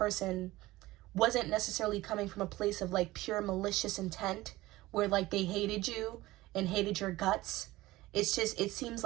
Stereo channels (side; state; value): left; quieter; 18.2 dB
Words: wasn't necessarily coming from a place of like pure malicious intent where like they hated you and hated your guts. It's just, it seems